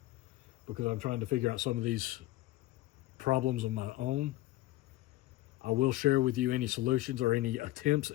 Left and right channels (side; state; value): right; quieter; 16.8 dB